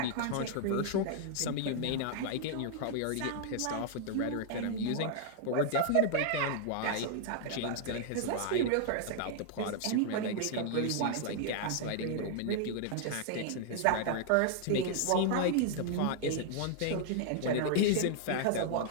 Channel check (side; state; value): both; different; correlation 0.00